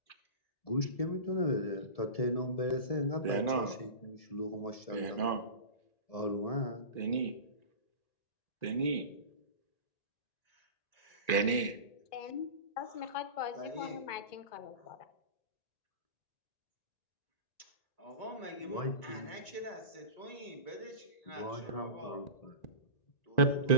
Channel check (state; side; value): late; right; 1.9 ms